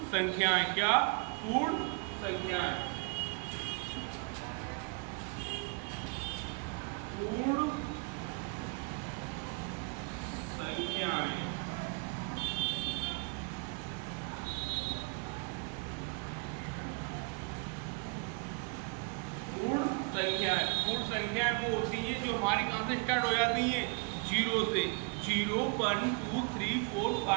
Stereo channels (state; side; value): quieter; left; 34.9 dB